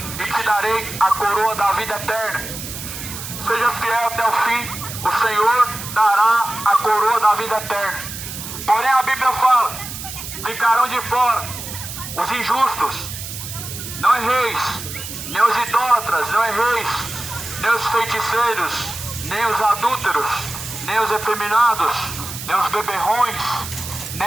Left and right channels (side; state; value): right; noise; hiss, 9 dB below the sound